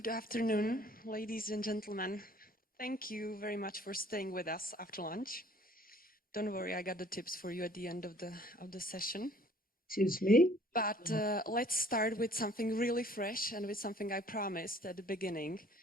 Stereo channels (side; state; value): both; normal; correlation 0.56